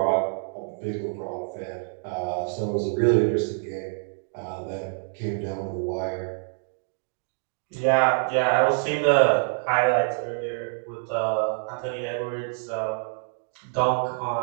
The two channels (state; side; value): silent; left; digital silence